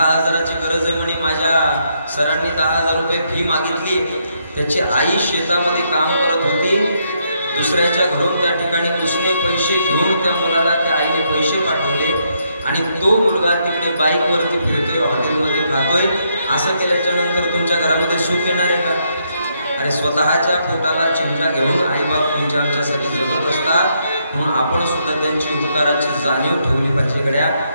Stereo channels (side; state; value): both; inverted; correlation -0.76